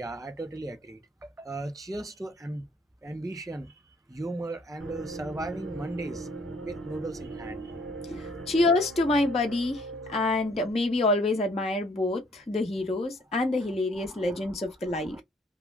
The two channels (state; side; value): normal; both; correlation 0.62